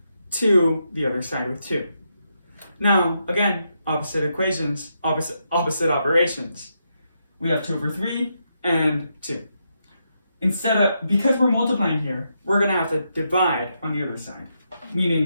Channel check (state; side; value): inverted; both; correlation -0.81